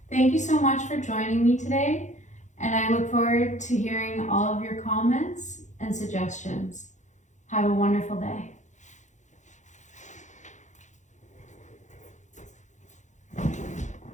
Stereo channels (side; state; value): right; late; 0.35 ms